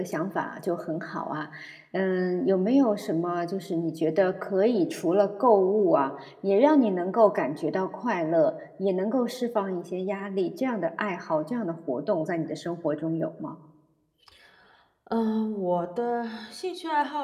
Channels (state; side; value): identical; both; correlation 1.00